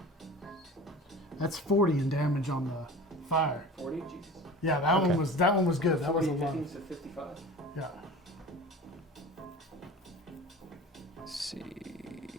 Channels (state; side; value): normal; both; correlation 0.37